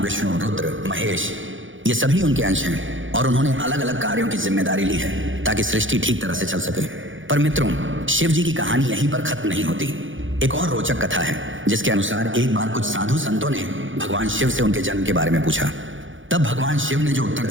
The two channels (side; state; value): left; late; 0.56 ms